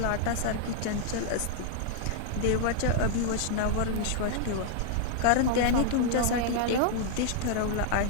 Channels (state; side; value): different; both; correlation 0.00